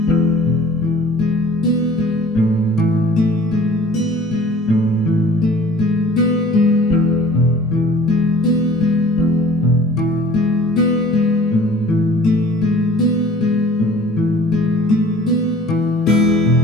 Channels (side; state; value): both; normal; correlation 0.48